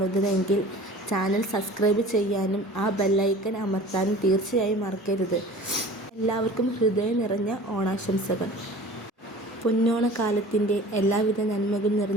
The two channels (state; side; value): normal; both; correlation 0.43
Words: ചാനൽ സബ്സ്ക്രൈബ് ചെയ്യാനും ആ ബെല്ലൈക്കൺ അമർത്താനും തീർച്ചയായും മറക്കരുത്. എല്ലാവർക്കും ഹൃദയം നിറഞ്ഞ ഓണാശംസകൾ. പൊന്നോണക്കാലത്തിൻ്റെ എല്ലാവിധ നന്മകൾ